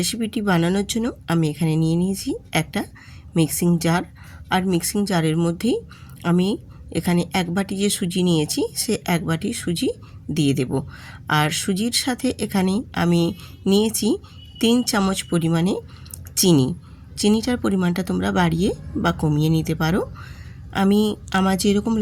বানানোর জন্য আমি এখানে নিয়ে নিয়েছি একটা মিক্সিং জার। আর মিক্সিং জারের মধ্যেই আমি এখানে এক বাটি যে সুজি নিয়েছি সে এক বাটি সুজি দিয়ে দেব। আর সুজির সাথে এখানে আমি নিয়েছি 3 চামচ পরিমাণে চিনি। চিনিটার পরিমাণটা তোমরা বাড়িয়ে বা কমিয়ে নিতে পারো। আমার যেরকম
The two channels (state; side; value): identical; both; correlation 1.00